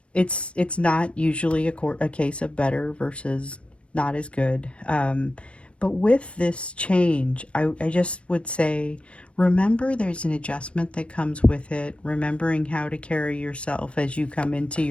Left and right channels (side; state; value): right; late; 0.060 ms